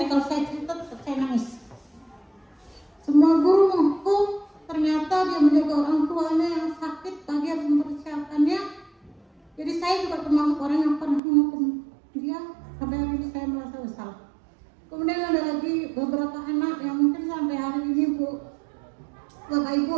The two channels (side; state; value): left; drops out; at 11.2 s